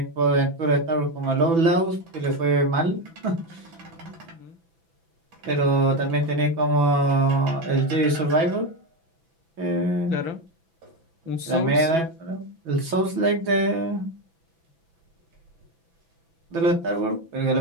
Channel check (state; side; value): late; left; 6.1 ms